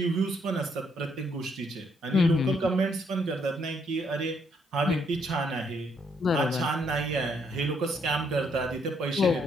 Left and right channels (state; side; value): normal; both; correlation 0.71